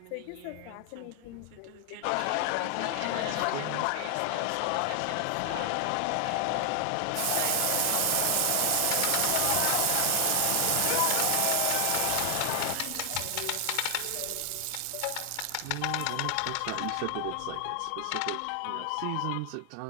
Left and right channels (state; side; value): different; both; correlation 0.00